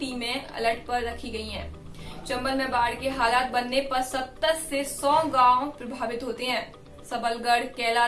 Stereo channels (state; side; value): identical; both; correlation 1.00